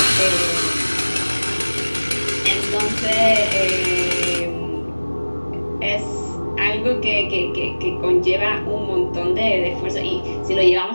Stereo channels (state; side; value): inverted; both; correlation -1.00